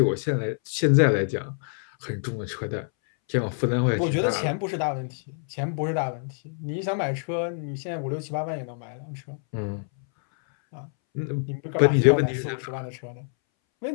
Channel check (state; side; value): silent; right; 61 dB below the other